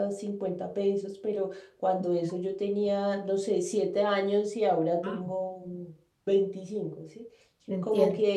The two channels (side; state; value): both; identical; correlation 1.00